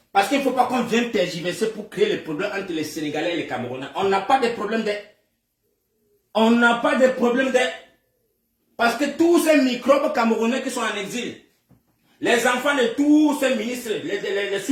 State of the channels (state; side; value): identical; both; correlation 1.00